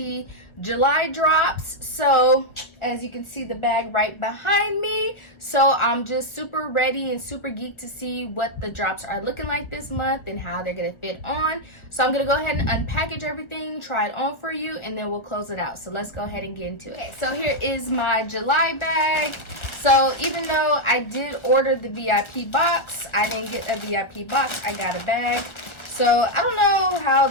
July drops. So as you can see, the bag right behind me. So I'm just super ready and super geeked to see what the drops are looking like this month and how they're gonna fit on. So I'm gonna go ahead and unpackage everything, try it on for you, and then we'll close it out. So let's go ahead and get into it. Okay, so here is my July bag. So even though I did order the VIP box, I didn't get a VIP box, I got a bag. So I don't know how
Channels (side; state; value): right; late; 1.4 ms